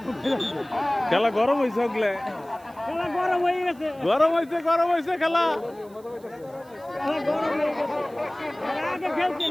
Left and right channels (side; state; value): right; noise; hiss, 28 dB below the sound